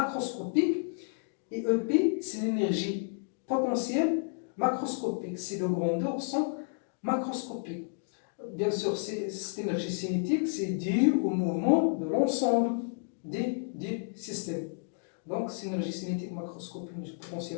Et EP, c'est l'énergie potentielle macroscopique. Ces deux grandeurs sont macroscopiques. Bien sûr, cette énergie cinétique, c'est dû au mouvement de l'ensemble des systèmes. Donc, c'est l'énergie cinétique macroscopique,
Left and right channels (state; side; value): silent; right; digital silence